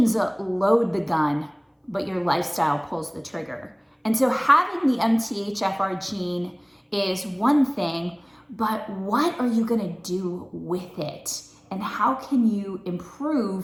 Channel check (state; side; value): identical; both; correlation 1.00